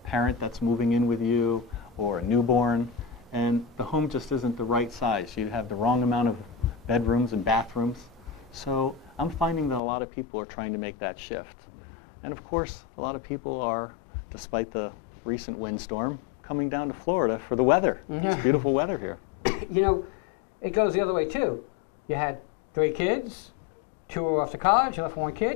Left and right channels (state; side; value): drops out; right; at 9.8 s